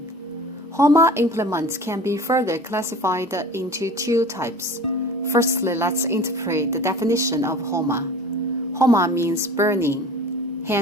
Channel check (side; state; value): both; normal; correlation 0.40